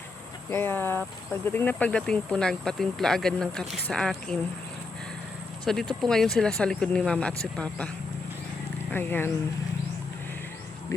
Kaya pagdating po nagpatimpla agad ng kape sa akin. So dito po ngayon sila sa likod ni Mama at si Papa. Ayan.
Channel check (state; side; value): quieter; right; 3.7 dB